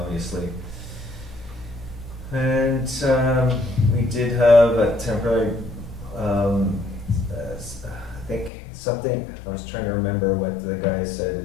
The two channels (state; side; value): drops out; right; at 8.5 s